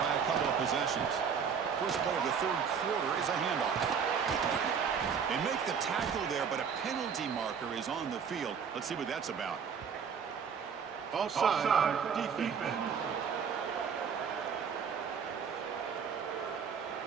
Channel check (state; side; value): quieter; left; 6.8 dB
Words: by a couple of possessions. First play of the third quarter is a handoff. They make the tackle there, but a penalty marker is on the field. Let's see what that's about. Offside, defense.